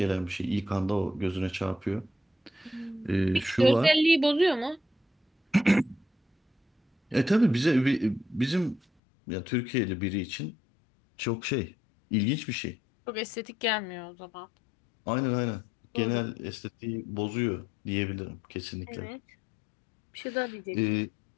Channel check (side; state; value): right; drops out; at 8.8 s